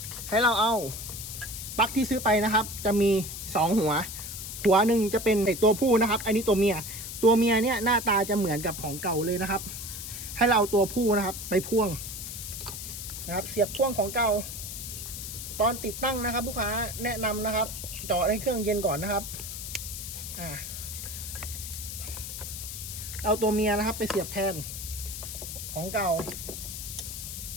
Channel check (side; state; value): left; noise; hiss, 8 dB below the sound